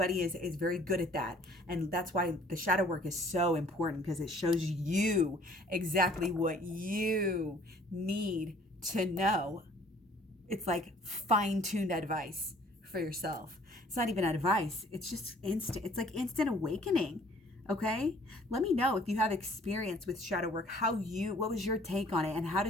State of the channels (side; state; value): both; normal; correlation 0.56